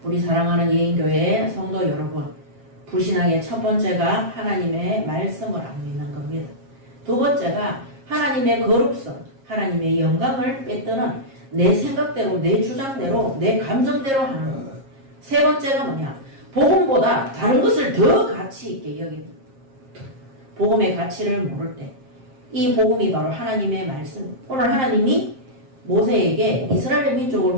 우리 사랑하는 예인교회 성도 여러분, 불신앙의 첫 번째가 하나님의 말씀을 안 믿는 겁니다. 두 번째가 하나님의 거룩성, 하나님의 영광을 뺏드는 내 생각대로, 내 주장대로, 내 감정대로 하는 것. 세 번째가 뭐냐? 복음보다 다른 것을 더 가치 있게 여깁니다. 복음의 가치를 모를 때 이 복음이 바로 하나님의 말씀. 오늘 하나님이 모세에게 이스라엘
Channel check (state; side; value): late; left; 7.4 ms